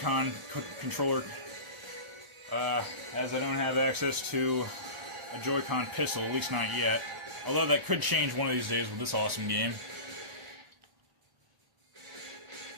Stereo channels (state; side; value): late; left; 1.0 ms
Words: controller, as I don't have access to a Joy-Con pistol, at least not yet. Although that could change one of these days with this awesome game,